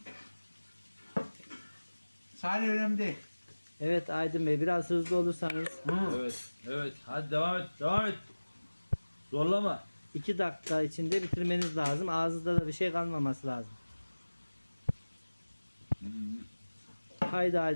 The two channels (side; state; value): both; inverted; correlation -1.00